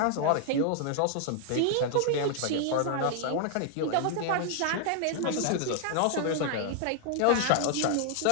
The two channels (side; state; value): both; different; correlation 0.00